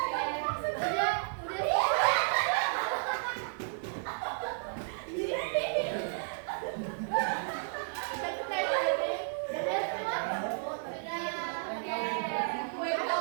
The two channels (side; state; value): left; silent; digital silence